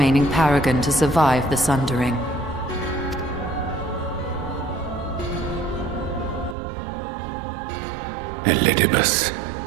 paragon to survive the Sundering. Elidibus.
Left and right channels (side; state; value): left; drops out; at 6.6 s